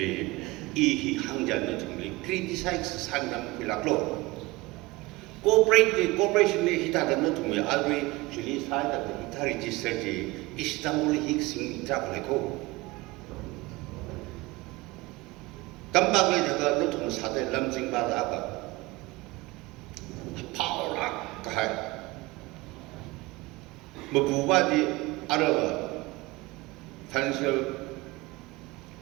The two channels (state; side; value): quieter; left; 21.4 dB